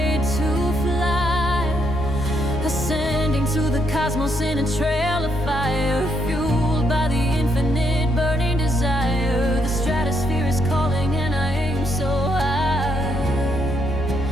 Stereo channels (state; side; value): noise; left; hum, 10 dB below the sound